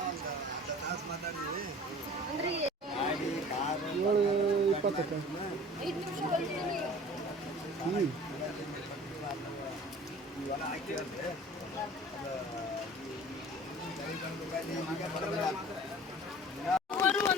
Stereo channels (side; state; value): both; normal; correlation 0.44